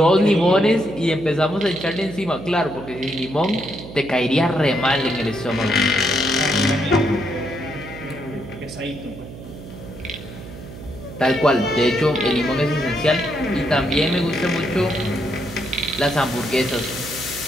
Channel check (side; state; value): right; noise; hum, 14 dB below the sound